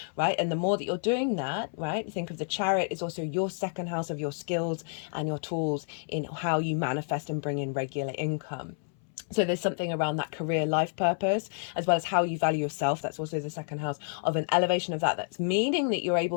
right? And the more that you're doing that, right, think of the Chariot is also your second house of your skills and your tools in how you manifest and bring in regular income. So there's something around that career life purpose, as well as how you value yourself. That's also the second house of an elevation of that. That's meaning that you're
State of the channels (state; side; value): silent; right; 58 dB below the other